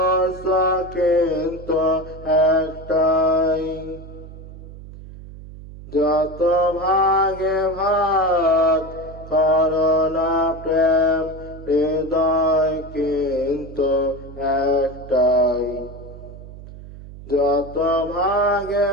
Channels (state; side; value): noise; right; hum, 15 dB below the sound